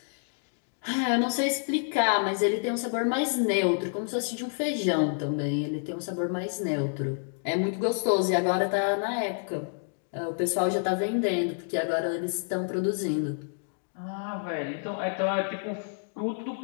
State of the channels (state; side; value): silent; right; digital silence